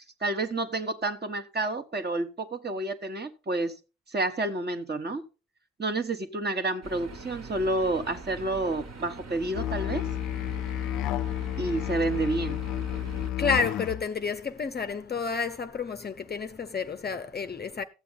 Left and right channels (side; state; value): both; normal; correlation 0.41